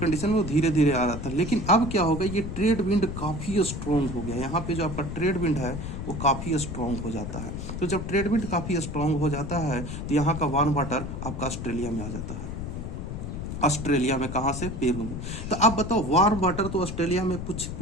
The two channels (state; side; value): noise; left; rumble, 6 dB below the sound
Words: में वो धीरे धीरे आ रहा था। लेकिन अब क्या होगा, ये ट्रेड विंड काफ़ी स्ट्रॉन्ग हो गया। यहाँ पे जो आपका ट्रेड विंड है वो काफ़ी स्ट्रॉन्ग हो जाता है। तो जब ट्रेड विंड काफ़ी स्ट्रॉन्ग हो जाता है तो यहाँ का वार्म वाटर आपका ऑस्ट्रेलिया में आ जाता है। ऑस्ट्रेलिया में कहाँ से, पेरू में। तो आप बताओ, वार्म वाटर तो ऑस्ट्रेलिया में